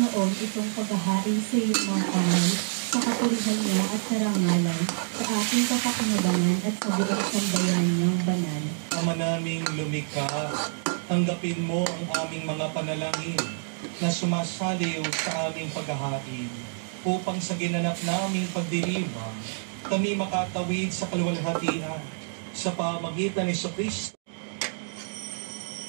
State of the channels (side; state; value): left; silent; digital silence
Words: itong paghahain sa iyong mga kamay, sa kapurihan niya at karangalan, sa ating kapakinabangan at sa buong sambayan niyang banal. Ama naming lumikha, tanggapin mo ang aming mga panalangin na sumasaliw sa aming paghahain upang sa ginanap naming pagdiriwang kami makatawid sa kaluwalhatian sa pamagitan ni Jesucristo.